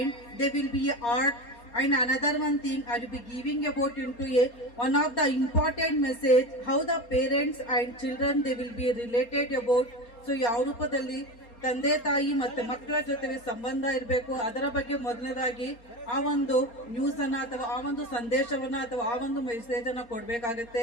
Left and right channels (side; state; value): right; late; 4.3 ms